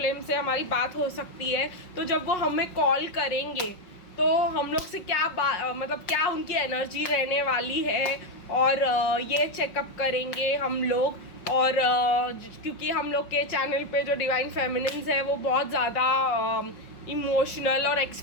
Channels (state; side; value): late; right; 5.5 ms